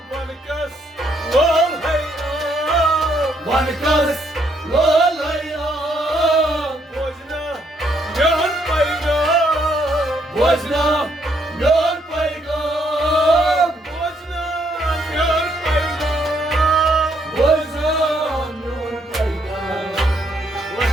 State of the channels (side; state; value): both; normal; correlation 0.72